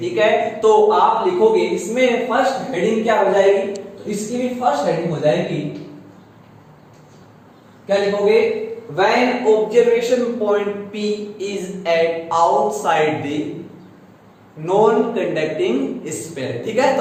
है, तो आप लिखोगे इसमें फर्स्ट हेडिंग क्या हो जाएगी, तो इसकी भी फर्स्ट हेडिंग हो जाएगी, क्या लिखोगे, when observation point P is at outside the non conducting sphere. ठीक है,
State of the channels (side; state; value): both; identical; correlation 1.00